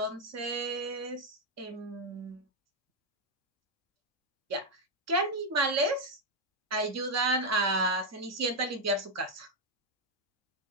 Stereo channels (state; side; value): normal; both; correlation 0.01